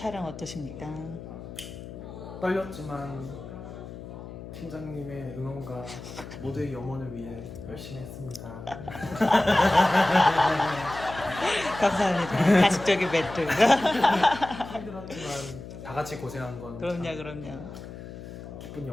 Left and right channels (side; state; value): left; noise; hum, 12 dB below the sound